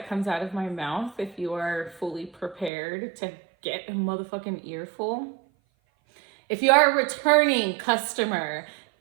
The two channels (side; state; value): left; drops out; at 2.7 s